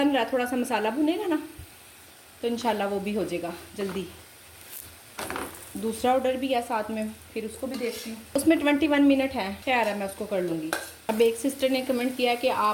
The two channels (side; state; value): both; identical; correlation 1.00